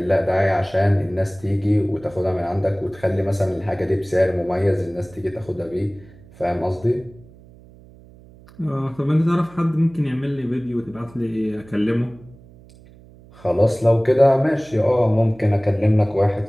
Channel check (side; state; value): right; noise; hum, 23 dB below the sound